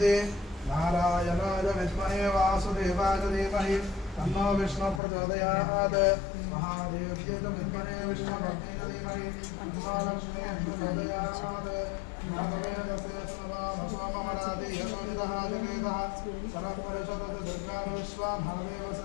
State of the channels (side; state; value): right; drops out; at 5.0 s